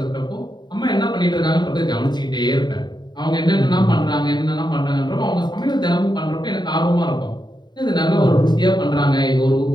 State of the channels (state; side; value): late; right; 0.21 ms